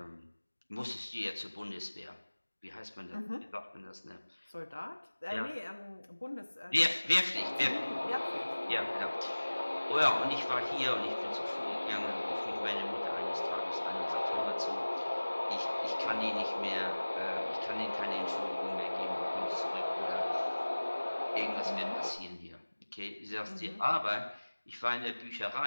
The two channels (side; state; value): both; inverted; correlation -1.00